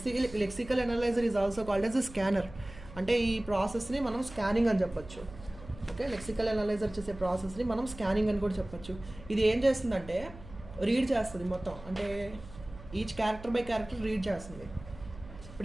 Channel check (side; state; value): right; noise; hum, 17 dB below the sound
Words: Lexical analyser is also called as a scanner. అంటే ఈ ప్రాసెస్ని మనం స్కానింగ్ అని చెప్పొచ్చు. ఓకే, లెక్సికల్ అనలైజర్ చేసే ప్రాసెస్ని మనం స్కానింగ్ అని కూడా చెప్పొచ్చు. ఇది ఏం చేస్తుందంటే రీడ్ చేస్తుంది మొత్తం, అంటే each character by character read చేస్తుంది.